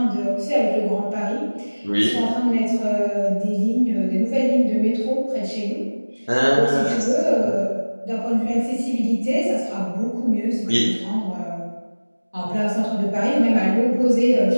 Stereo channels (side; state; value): both; inverted; correlation -1.00